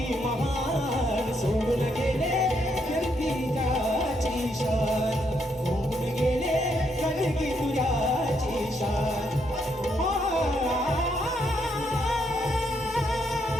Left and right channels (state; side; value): normal; both; correlation 0.76